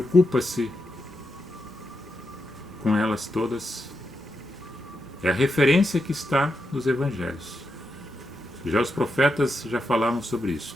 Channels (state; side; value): normal; both; correlation 0.85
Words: com elas todas. É a referência que está nos evangelhos. Já os profetas já falavam sobre